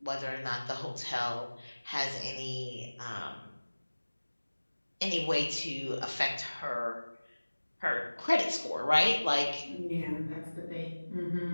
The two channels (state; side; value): inverted; both; correlation -1.00